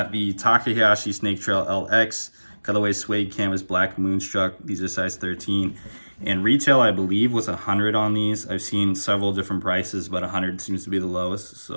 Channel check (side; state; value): both; inverted; correlation -1.00